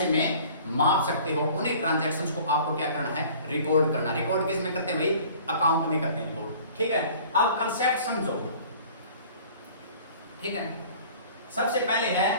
में माप सकते हो, उन्हीं ट्रांजैक्शंस को आपको क्या करना है, रिकॉर्ड करना। रिकॉर्ड किस में करते हैं भाई, अकाउंट में करते हैं रिकॉर्ड, ठीक है। अब कंसेप्ट समझो, ठीक है। सबसे पहले है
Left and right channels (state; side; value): inverted; both; correlation -0.48